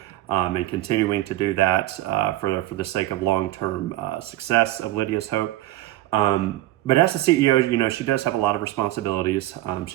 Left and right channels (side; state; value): left; quieter; 15.8 dB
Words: and continuing to do that for the sake of long-term success of Lydia's Hope. But as a CEO, she does have a lot of responsibilities.